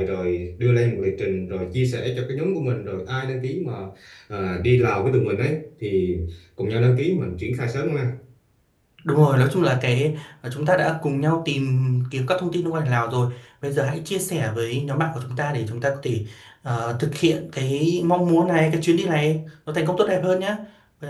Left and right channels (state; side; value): identical; both; correlation 1.00